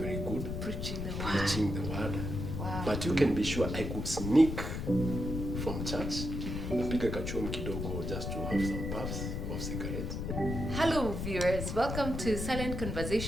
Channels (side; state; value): left; noise; rumble, 4 dB below the sound